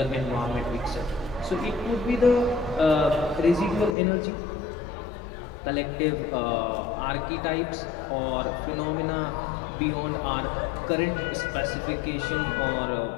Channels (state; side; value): drops out; right; at 4.0 s